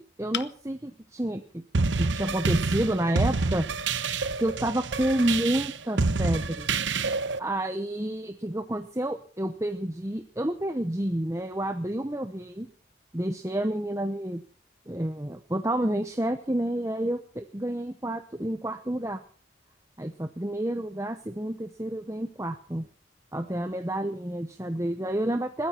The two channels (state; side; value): normal; both; correlation 0.76